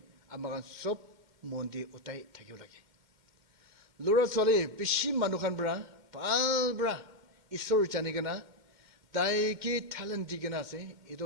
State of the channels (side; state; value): left; late; 2.1 ms